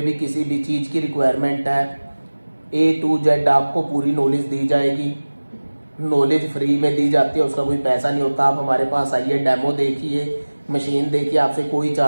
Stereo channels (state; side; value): inverted; both; correlation -1.00